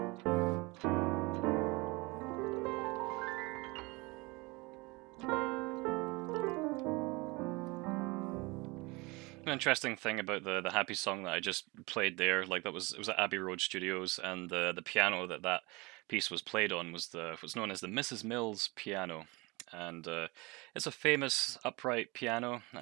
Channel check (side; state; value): left; quieter; 24.9 dB